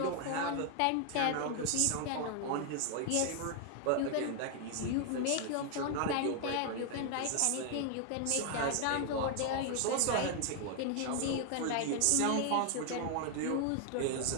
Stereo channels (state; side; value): different; both; correlation 0.00